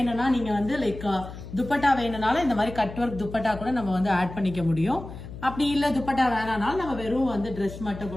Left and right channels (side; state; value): left; noise; hum, 12 dB below the sound